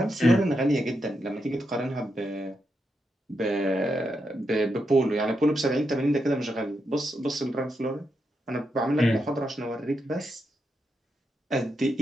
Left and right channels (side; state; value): both; normal; correlation 0.84